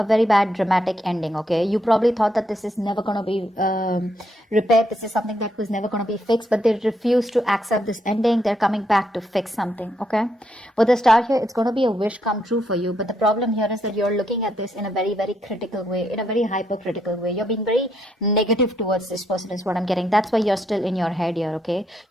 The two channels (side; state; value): both; normal; correlation 0.76